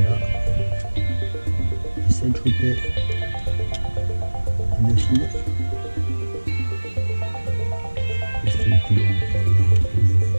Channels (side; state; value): both; inverted; correlation -1.00